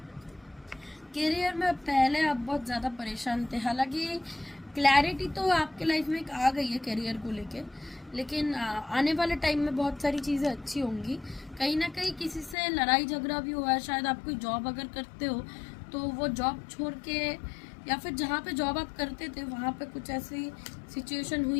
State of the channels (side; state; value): right; drops out; at 12.6 s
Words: करियर में पहले आप बहुत ज़्यादा परेशान थे, हालांकि क्लैरिटी तो आपके लाइफ में एक आ गई है करियर को लेके, लेकिन आने वाले टाइम में बहुत सारी चीज़ें अच्छी होंगी। कहीं ना कहीं किसी से लड़ाई झगड़ा भी हुआ है, शायद आप कोई जॉब अगर करते हो तो वो जॉब छोड़ के, या फिर जहाँ पे जॉब आप करते थे वहाँ पे कुछ ऐसी सिचुएशन